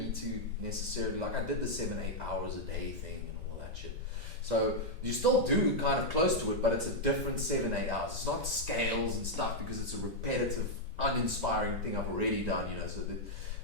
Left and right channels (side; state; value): both; normal; correlation -0.02